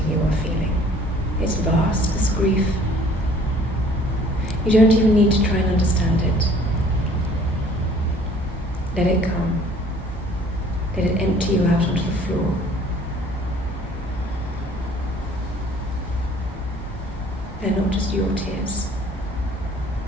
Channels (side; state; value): both; normal; correlation 0.54